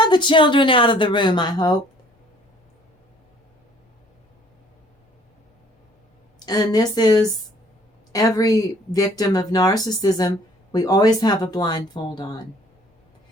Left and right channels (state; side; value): normal; both; correlation 0.57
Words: the children out of the room, I hope? And this is every victim of narcissism. We always have a blindfold on.